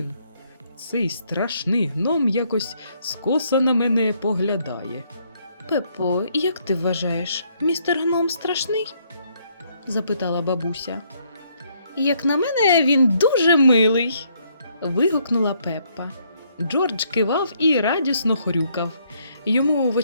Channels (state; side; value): inverted; both; correlation -0.70